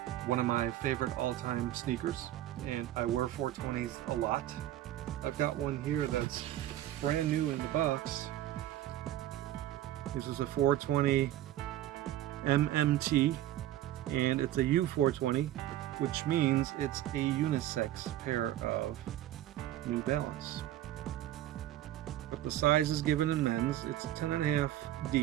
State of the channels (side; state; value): left; quieter; 13.4 dB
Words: one of my favorite all-time sneakers, and I wear 420s a lot. I've got one here that's brand new in the box. This is a 420 MMT, and it's a U420, which means it's a unisex pair of New Balance. But the size is given in men's. It's 10.5